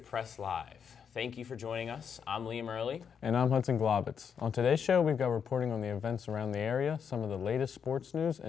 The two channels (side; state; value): right; quieter; 7.2 dB